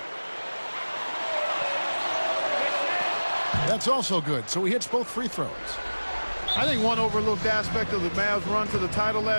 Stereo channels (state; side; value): inverted; both; correlation -1.00